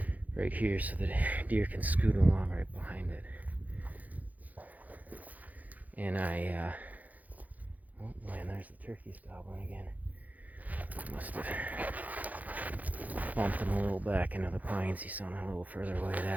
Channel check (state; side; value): late; left; 0.079 ms